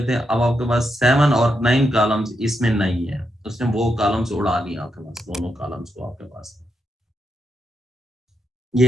थे, अब आपके पास 7 और 9 कॉलम्स इसमें नहीं है, उसने वो कॉलम्स उड़ा दिया आपके पास, दोनों कॉलम्स को आपके पास।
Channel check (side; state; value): both; normal; correlation 0.83